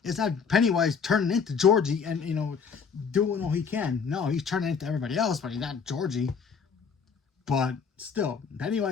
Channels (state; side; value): quieter; right; 6.0 dB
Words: It's not Pennywise turning into Georgie and doing all he can. No, he's turning into everybody else, but he's not Georgie. But still,